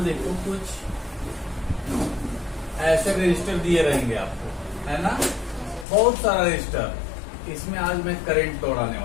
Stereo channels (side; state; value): right; drops out; at 5.9 s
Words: देखो कुछ ऐसे रजिस्टर दिए रहेंगे आपको, है ना, बहुत सारा रजिस्टर। इसमें आज मैं करंट दौड़ाने